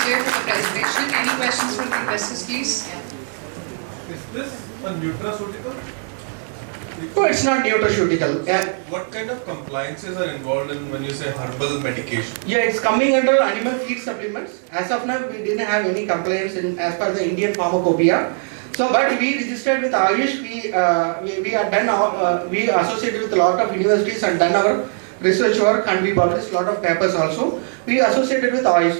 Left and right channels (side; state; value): left; silent; 57 dB below the other